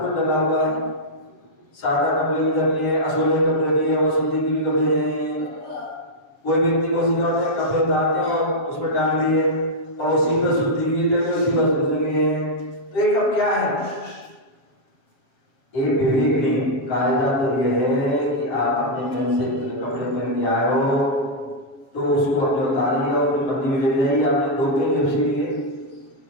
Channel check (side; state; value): right; late; 7.3 ms